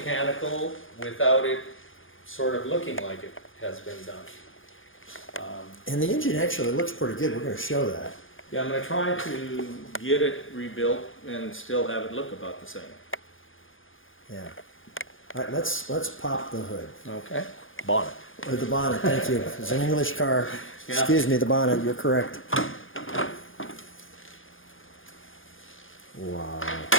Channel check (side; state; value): right; late; 0.58 ms